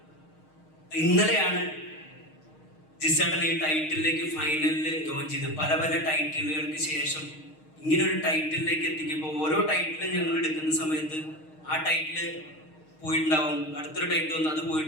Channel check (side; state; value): right; late; 6.5 ms